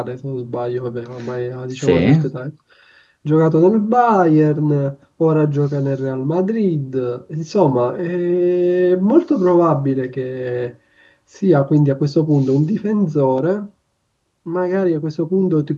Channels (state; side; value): identical; both; correlation 1.00